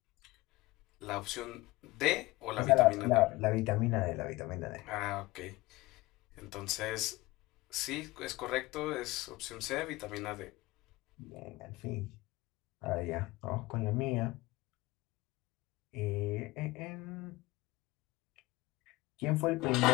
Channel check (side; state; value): right; quieter; 20.6 dB